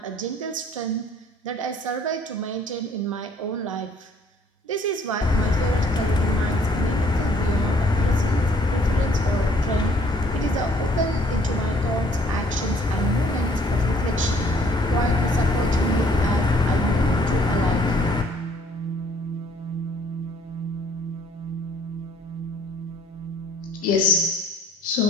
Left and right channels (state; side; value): normal; both; correlation 0.61